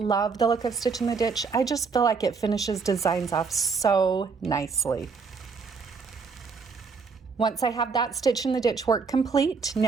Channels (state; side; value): quieter; left; 5.1 dB